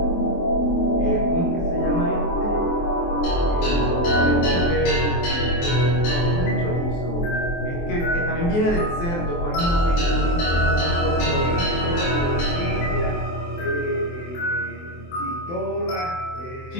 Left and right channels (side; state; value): right; late; 23 ms